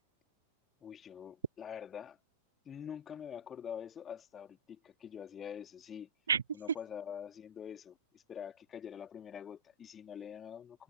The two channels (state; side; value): normal; both; correlation -0.20